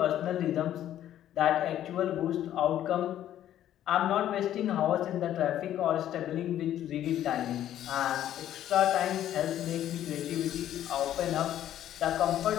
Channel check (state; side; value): quieter; right; 11.7 dB